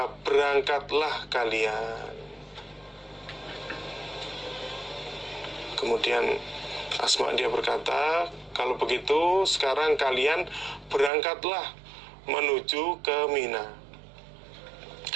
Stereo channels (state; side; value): drops out; left; at 11.1 s